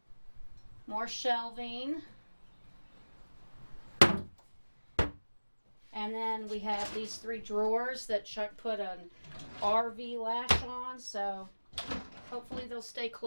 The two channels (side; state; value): both; inverted; correlation -1.00